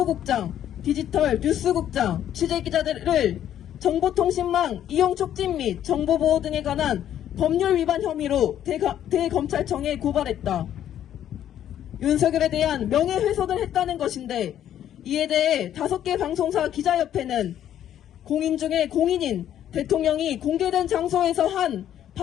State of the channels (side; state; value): right; quieter; 10.8 dB